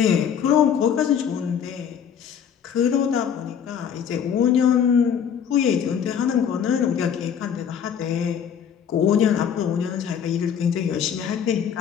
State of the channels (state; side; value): quieter; right; 8.1 dB